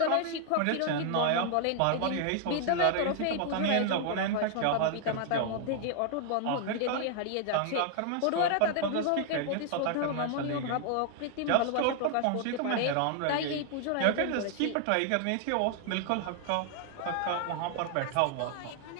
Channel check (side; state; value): both; different; correlation 0.00